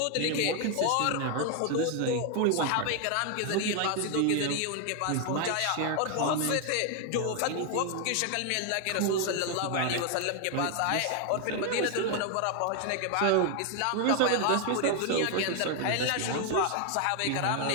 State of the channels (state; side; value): different; both; correlation 0.01